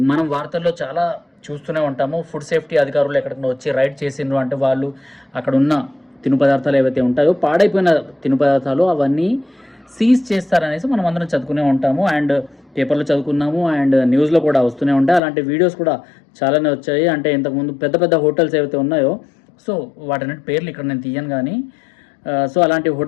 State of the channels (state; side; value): drops out; right; at 15.2 s